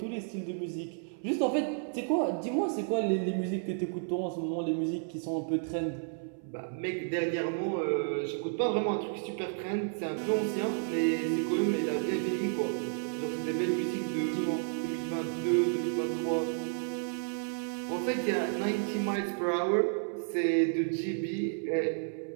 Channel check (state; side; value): silent; left; 57 dB below the other